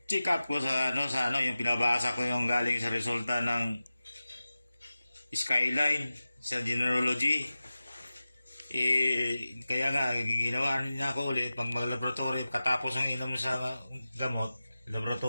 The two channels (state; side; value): inverted; both; correlation -0.95